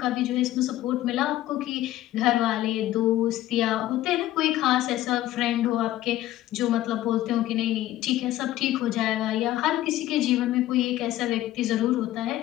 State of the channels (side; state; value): right; quieter; 14.5 dB